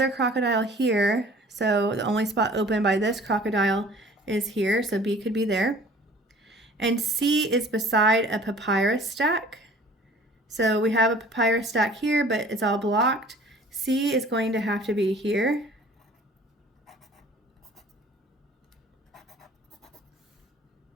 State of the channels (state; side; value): normal; both; correlation 0.49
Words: crocodile here. So the only spot open by this crocodile is here. So B could be there. And C is beside a papyrus stack. So we have a papyrus stack here, but it's all blocked. C is going to have to be here.